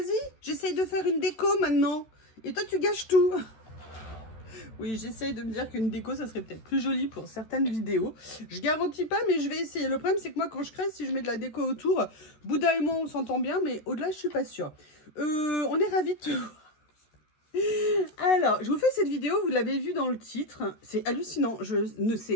j'essaye de faire une déco maintenant. Et toi, tu gâches tout. Oui, j'essaye de me dire qu'une déco, ça serait peut-être plus joli pour certaines vidéos. Je garantis pas, mais je vais essayer. Le problème, c'est que moi, quand je crée, si je mets de la déco autour, Bouddha et moi, on s'entend bien, mais au-delà, je suis pas sûre. On est ravis de te voir. Alors, je vous fais cette vidéo, vous l'avez vu dans le titre. C'est hallucinant, je ne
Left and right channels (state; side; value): late; right; 13 ms